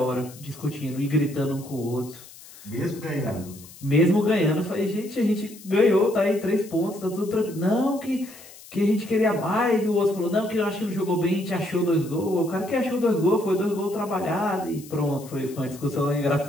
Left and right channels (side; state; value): left; noise; hiss, 19 dB below the sound